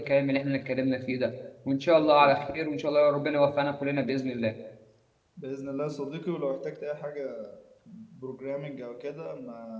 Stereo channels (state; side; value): identical; both; correlation 1.00